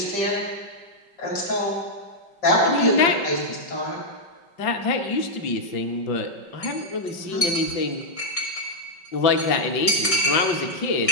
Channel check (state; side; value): late; right; 5.3 ms